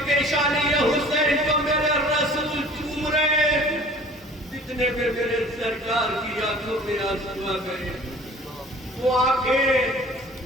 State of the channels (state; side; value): normal; both; correlation 0.48